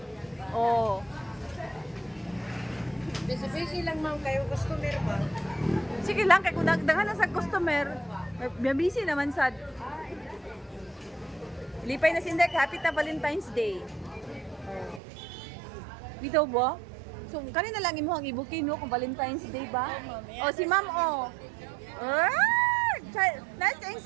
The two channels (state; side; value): drops out; left; at 15.0 s